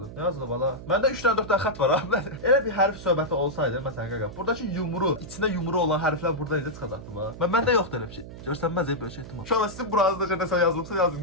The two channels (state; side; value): noise; right; hum, 13 dB below the sound